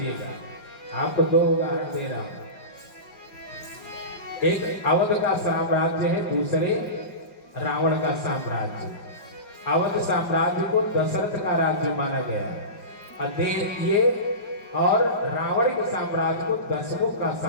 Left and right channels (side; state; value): right; late; 5.4 ms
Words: आपको 2 उदाहरण दे रहा हूं। एक अवध का साम्राज्य है, दूसरे रावण का साम्राज्य। अवध साम्राज्य को दशरथ का राज्य माना गया और रावण के साम्राज्य को दशमुख का